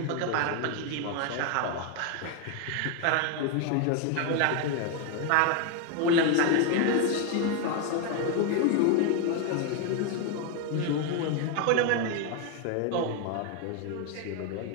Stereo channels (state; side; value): different; both; correlation 0.01